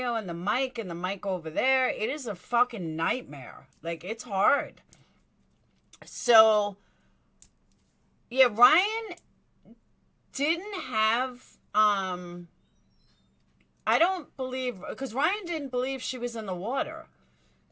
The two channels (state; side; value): identical; both; correlation 1.00